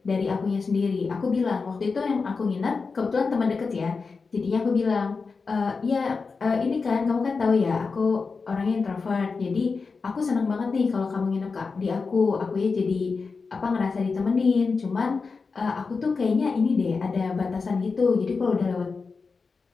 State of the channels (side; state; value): right; quieter; 4.6 dB